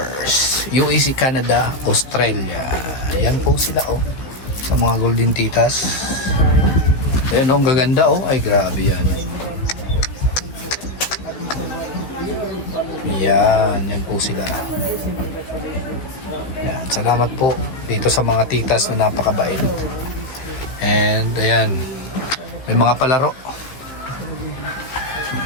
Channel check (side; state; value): right; late; 16 ms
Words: UAC Canada, Australia. Yan po sila oh. Sa mga Golden Titas. Ayan oh, ang gaganda oh. Ay, grabe yan. Yan po sila. Yan, salamat po dito sa mga titas na napakabait. And ayan, may mga palaro.